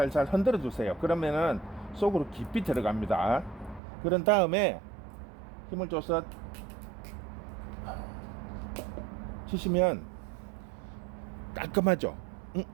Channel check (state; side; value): drops out; left; at 3.8 s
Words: 흔들어 주세요. 그러면은 속으로 깊이 들어갑니다. 그런 다음에 힘을 줘서 치시면 깔끔하죠.